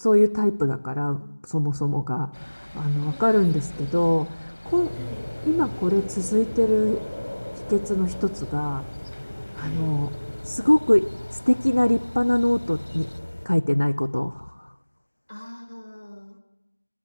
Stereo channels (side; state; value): both; inverted; correlation -1.00